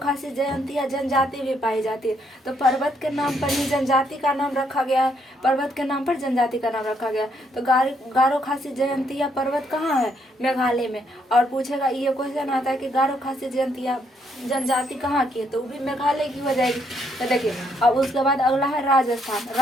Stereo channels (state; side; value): normal; both; correlation 0.73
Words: जयंतियाँ जनजाति भी पाई जाती है। तो पर्वत के नाम पर ही जनजाति का नाम रखा गया है। पर्वत के नाम पर जनजाति का नाम रखा गया। तो गारो खासी जयंतियाँ पर्वत कहाँ है? मेघालय में। और पूछेगा, ये क्वेश्चन आता है कि गारो खासी जयंतियाँ जनजाति कहाँ की है? तो वो भी मेघालय की हो जाएगी। तो देखिए, अब उसके बाद अगला है